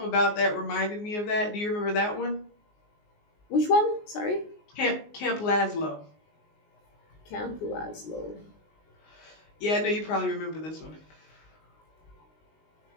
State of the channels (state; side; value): late; right; 19 ms